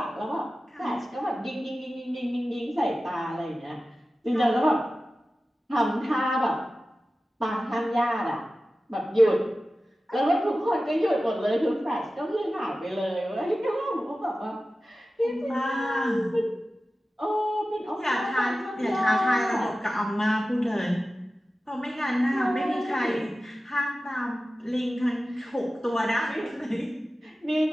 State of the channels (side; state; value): both; normal; correlation 0.95